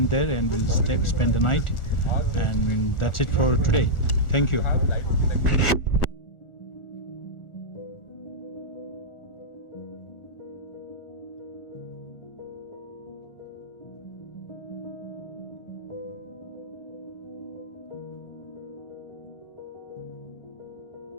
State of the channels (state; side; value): late; right; 1.4 ms